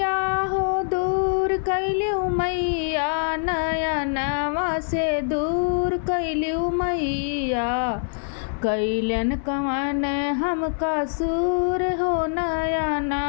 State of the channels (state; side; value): silent; right; 63 dB below the other